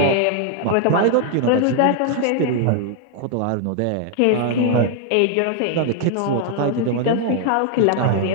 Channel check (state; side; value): different; both; correlation 0.00